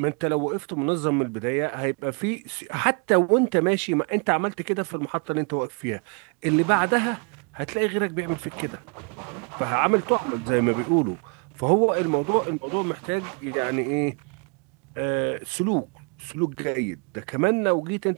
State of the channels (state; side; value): quieter; left; 34.4 dB